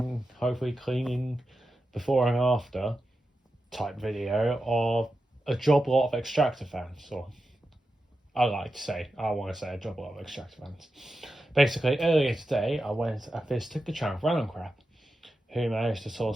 hopefully cleaning before and after type video of a Joblot of extractor fans, or I want to say a Joblot of extractor fans. Basically, earlier today I visited the channel Random Crap, who managed to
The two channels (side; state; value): both; normal; correlation 0.91